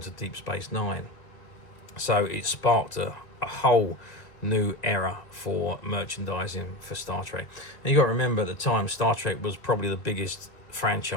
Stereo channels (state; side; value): late; right; 1.7 ms